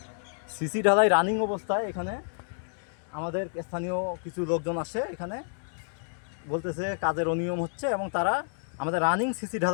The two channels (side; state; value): right; silent; digital silence